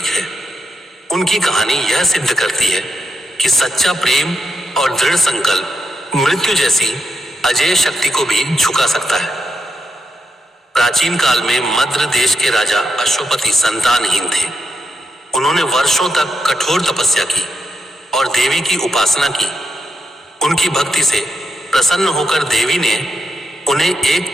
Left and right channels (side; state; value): both; normal; correlation 0.83